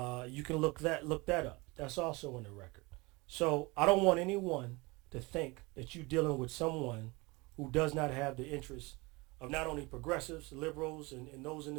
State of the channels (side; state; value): left; quieter; 25.1 dB